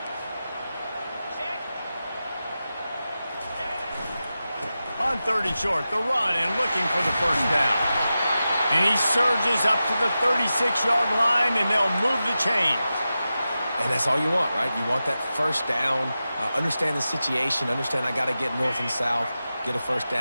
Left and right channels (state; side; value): inverted; both; correlation -0.92